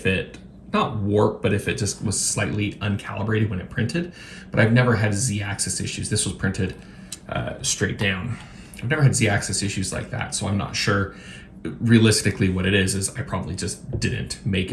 it, not warped, but if it just was slightly uncalibrated when it printed. But I've never had Z-axis issues. This was printed straight down. I've never had Z-axis issues like that, so I'm not sure. Realistically, what it is I probably just didn't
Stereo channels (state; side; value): identical; both; correlation 1.00